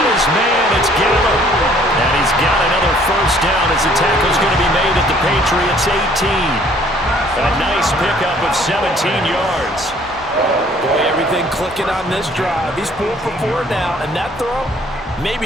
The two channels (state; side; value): normal; both; correlation 0.59